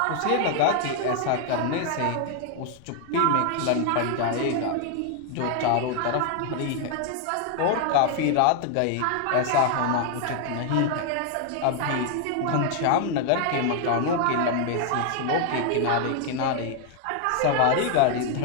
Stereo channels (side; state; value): both; different; correlation 0.00